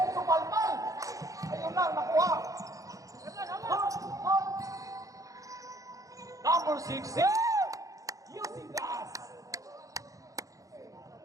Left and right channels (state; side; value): late; left; 0.16 ms